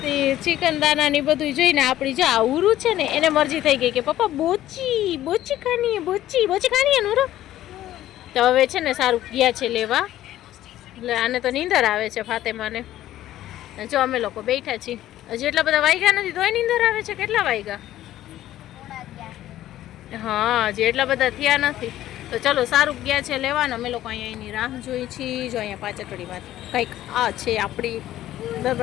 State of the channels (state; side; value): quieter; right; 13.6 dB